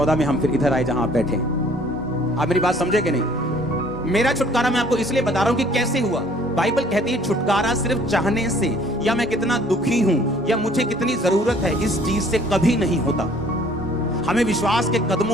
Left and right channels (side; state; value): both; normal; correlation 0.57